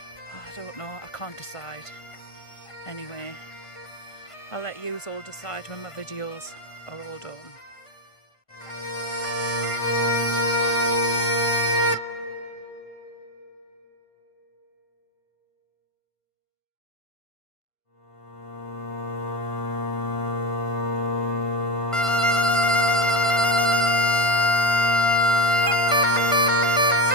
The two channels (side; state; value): right; late; 1.5 ms